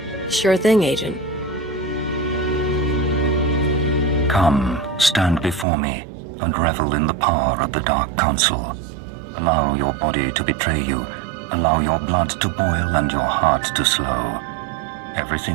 Sure thing, Agent. Come, stand before me, and revel in the power of the Dark Council. Allow your body to betray you. Allow your blood to boil and your heart to slow.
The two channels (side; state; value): left; drops out; at 5.7 s